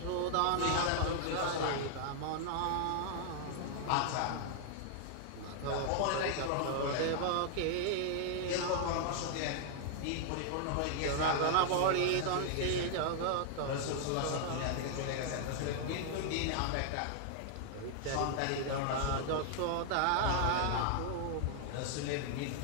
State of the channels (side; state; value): both; different; correlation 0.00